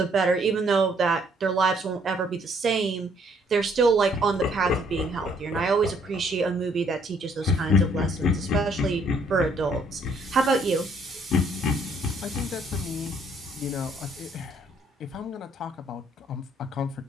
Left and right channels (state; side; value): normal; both; correlation 0.66